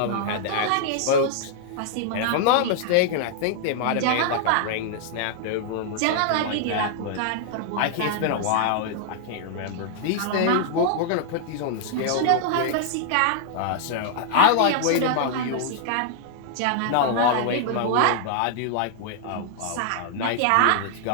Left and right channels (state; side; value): different; both; correlation -0.01